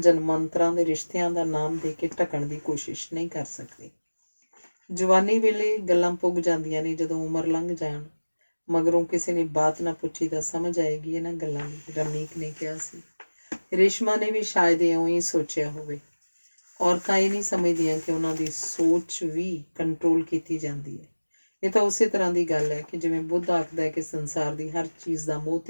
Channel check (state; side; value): inverted; both; correlation -1.00